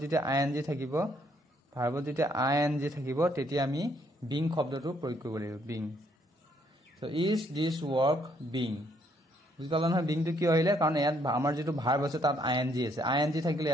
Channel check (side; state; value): both; normal; correlation 0.70